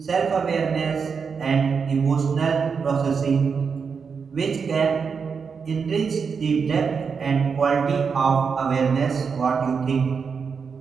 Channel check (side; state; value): left; quieter; 5.8 dB